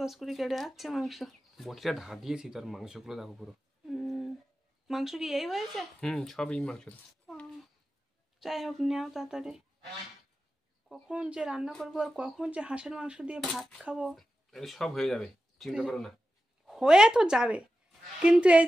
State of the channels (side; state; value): both; normal; correlation 0.92